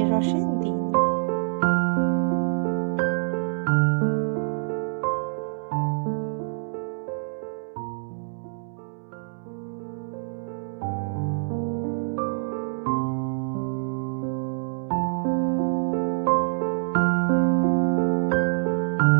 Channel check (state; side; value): silent; left; 61 dB below the other